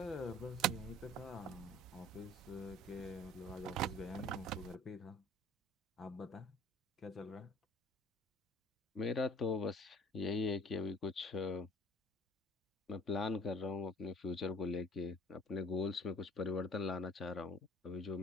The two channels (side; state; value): both; normal; correlation 0.51